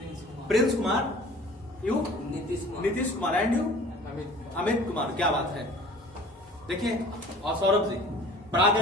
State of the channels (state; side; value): normal; both; correlation 0.46